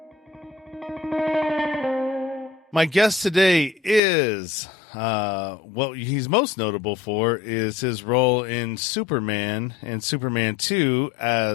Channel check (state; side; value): drops out; right; at 4.0 s